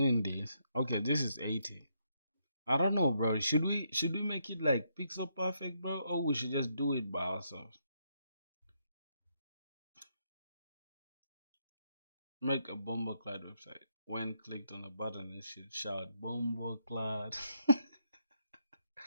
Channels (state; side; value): inverted; both; correlation -0.77